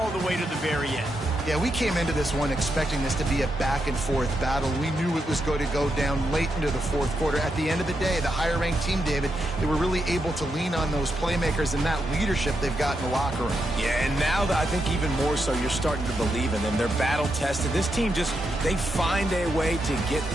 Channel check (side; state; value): both; normal; correlation 0.83